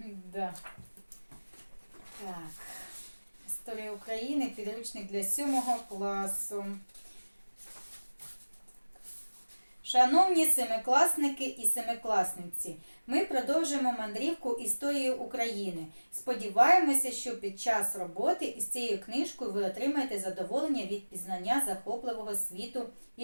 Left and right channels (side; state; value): both; inverted; correlation -1.00